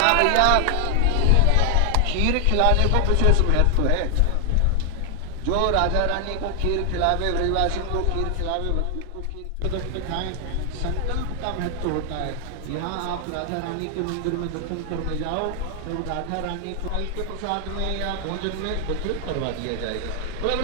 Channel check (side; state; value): both; different; correlation 0.00